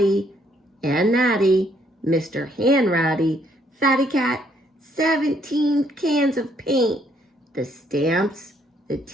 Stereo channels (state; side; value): normal; both; correlation 0.69